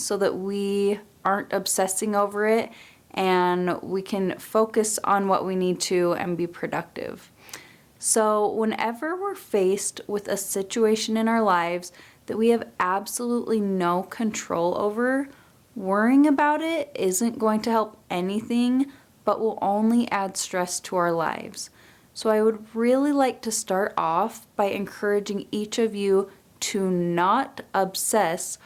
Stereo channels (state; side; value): identical; both; correlation 1.00